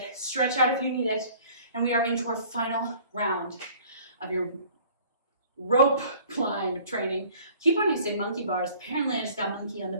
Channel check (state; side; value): inverted; both; correlation -0.52